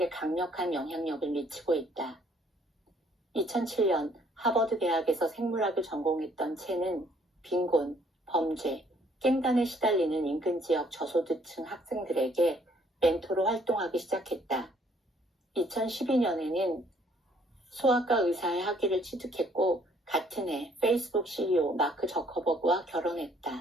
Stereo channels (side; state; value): both; normal; correlation 0.63